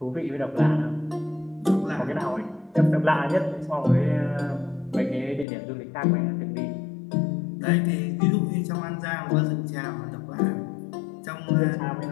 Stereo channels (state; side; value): drops out; right; at 5.5 s